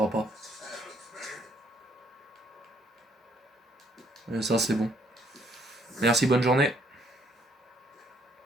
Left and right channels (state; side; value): normal; both; correlation 0.67